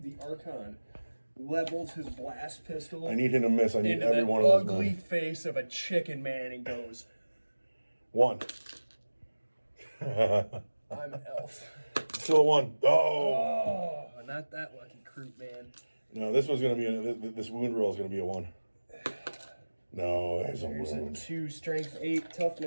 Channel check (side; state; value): both; inverted; correlation -1.00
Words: The Archon levels his blast pistol I need him to miss. I need into every the one of those. ugly Men. face of a chicken man and goes, 1. I'm elf. Still a 1. Oh. Oh, not that lucky Kroot, man. No, this was going to be this wound roll is going to be a 1. No, there's a There's a wound. 2 strength 8